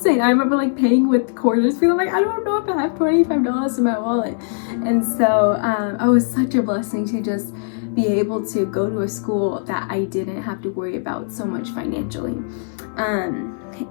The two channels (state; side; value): silent; right; 66 dB below the other